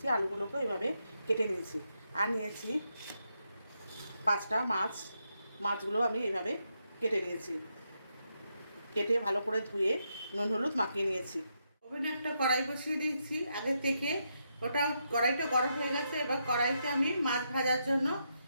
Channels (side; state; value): both; inverted; correlation -0.81